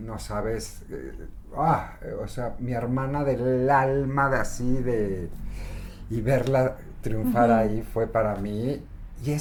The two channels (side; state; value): both; identical; correlation 1.00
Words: sabes, o sea, mi hermana del alma, y verla triunfar ahí fue para mí, y